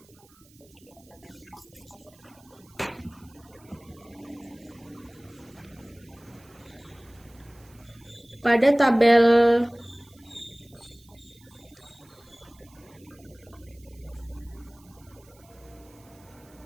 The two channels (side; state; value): right; noise; hiss, 27 dB below the sound